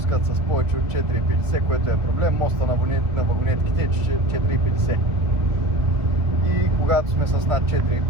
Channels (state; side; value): late; left; 2.1 ms